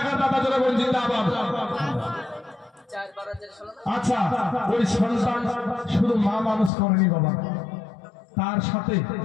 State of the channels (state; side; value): drops out; right; at 6.7 s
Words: দাতা জোরে বল জিন্দাবাদ। আচ্ছা, ওই সন্তান শুধু মা মানুষ করেনি বাবা,